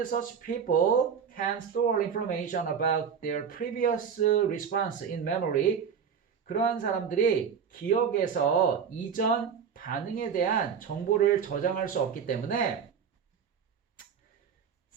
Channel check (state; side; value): quieter; left; 7.1 dB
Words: such people can store information about their previous response in memory. 그러한 사람들이 기억에서 이전 반응에 대한 정보를 저장할 수 없기 때문에